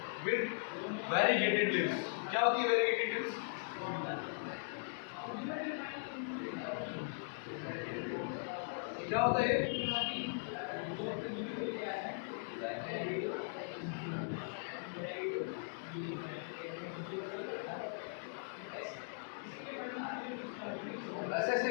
with variegated leaves. क्या होती है वेरीगेटेड लीव्स? क्या होता है? ऐसे ऐसे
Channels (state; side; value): silent; right; digital silence